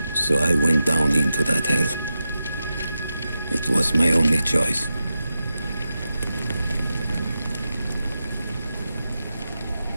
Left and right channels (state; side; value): inverted; both; correlation -0.90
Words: So I went down into that hell. It was my only choice.